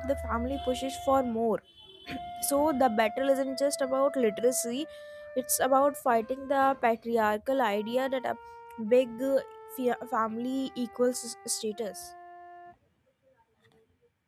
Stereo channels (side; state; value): both; identical; correlation 1.00